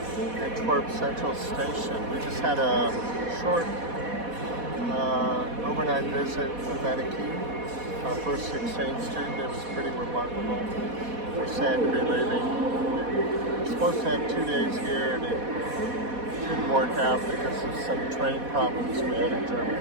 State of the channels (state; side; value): late; left; 4.1 ms